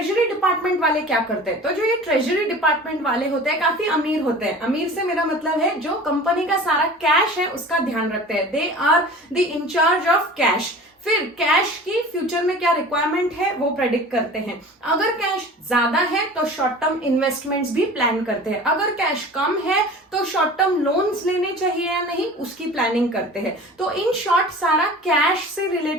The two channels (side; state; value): both; normal; correlation 0.40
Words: डिपार्टमेंट वाले क्या करते हैं. तो जो ये ट्रेजरी डिपार्टमेंट वाले होते हैं काफी अमीर होते हैं. अमीर से मेरा मतलब है जो कंपनी का सारा कैश है उसका ध्यान रखते हैं. They are the incharge of cash. फिर कैश की फ्यूचर में क्या रिक्वायरमेंट है वो प्रेडिक्ट करते हैं. अगर कैश ज्यादा है तो शॉर्ट टर्म इन्वेस्टमेंट्स भी प्लान करते हैं. अगर कैश कम है तो शॉर्ट टर्म लोन्स लेने चाहिए या नहीं उसकी प्लानिंग करते हैं. तो इन शॉर्ट सारा कैश से